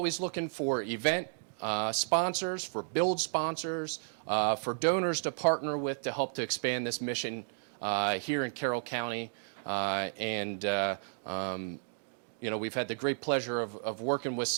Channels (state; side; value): silent; left; digital silence